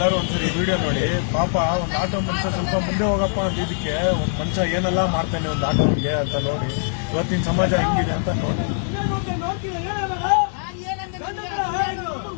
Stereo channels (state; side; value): silent; right; digital silence